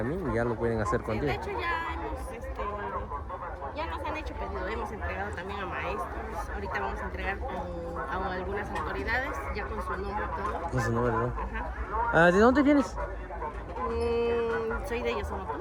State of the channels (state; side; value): identical; both; correlation 1.00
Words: y ya lo pueden hacer contigo. De hecho ya nos han hecho pedido, hemos entregado también a maestros, ahorita vamos a entregar a algunas autoridades ya con su nombre y todo. Con su nombre, ¿no? Ajá. ¿De dónde vienes? Soy de